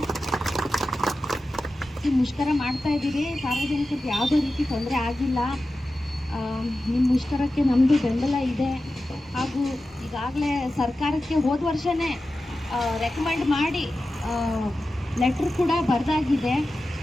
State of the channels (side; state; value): both; normal; correlation 0.93